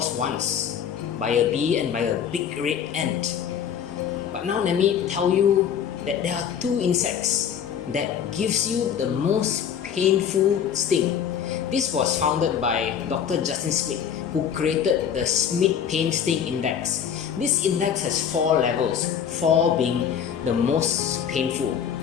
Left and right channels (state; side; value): quieter; right; 8.3 dB